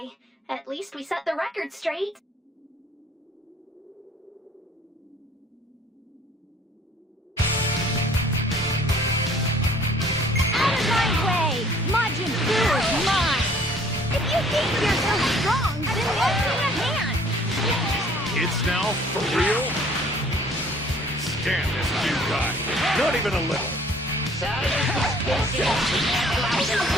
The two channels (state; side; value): normal; both; correlation 0.56